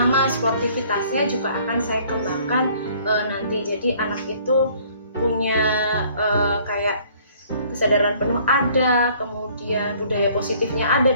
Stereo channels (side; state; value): both; inverted; correlation -0.58